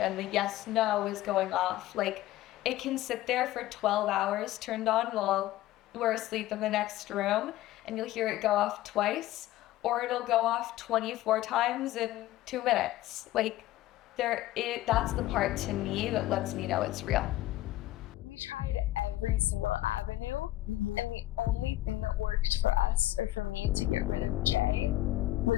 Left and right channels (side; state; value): right; quieter; 15.3 dB